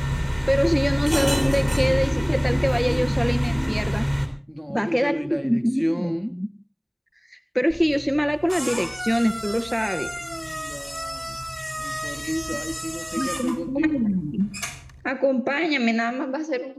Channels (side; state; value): both; identical; correlation 1.00